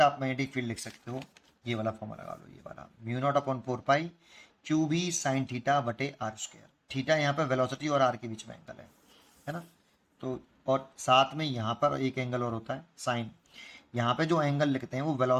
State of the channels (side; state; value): both; identical; correlation 1.00